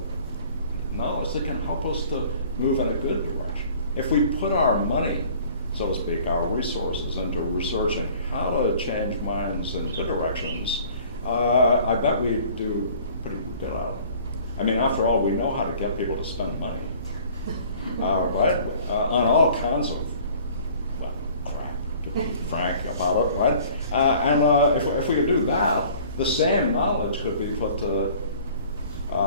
knowledge that can help us to move in a good direction. If we put our money, so to speak, our resources into researching how to change minds in good directions, I bet we do pretty good at it. I mean, after all, we know how to get people to spend money, right? On all kinds of, well, crap, to be frank about it, right? And if we could do that, the same knowledge could be put to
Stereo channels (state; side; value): inverted; both; correlation -0.51